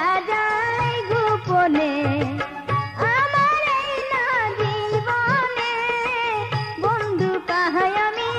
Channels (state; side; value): identical; both; correlation 1.00